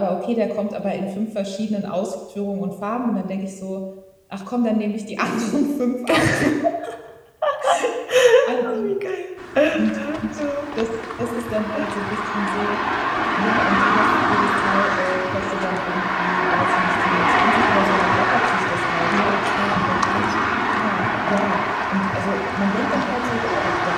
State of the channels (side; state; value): both; identical; correlation 1.00